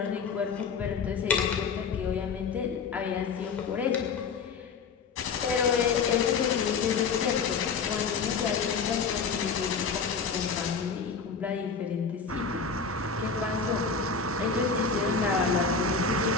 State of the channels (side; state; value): right; quieter; 5.3 dB